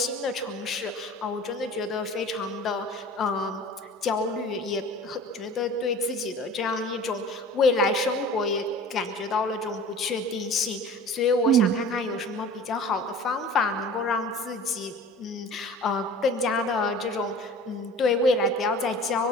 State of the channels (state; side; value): normal; both; correlation 0.42